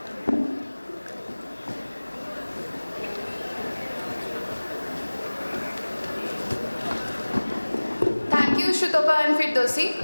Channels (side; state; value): both; inverted; correlation -1.00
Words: Thank you, Shutapa and